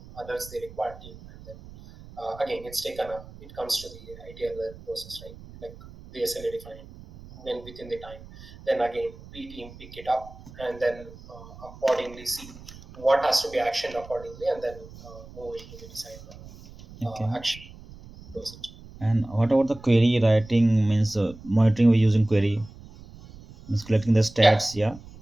others the required team, and then again, it's taken up. It comes to the ITL process, right? Like the SLA defined when within the time. Then again, B team pick it up and then accordingly see what has to be actioned accordingly, and then move into the design Okay. action dosage. And what about the query writing? Means monitoring we're using query, means collecting the Yeah. stats. Yeah.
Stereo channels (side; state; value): right; noise; rumble, 18 dB below the sound